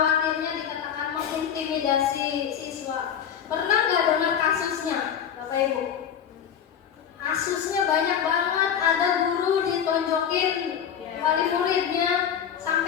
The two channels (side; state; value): right; quieter; 8.5 dB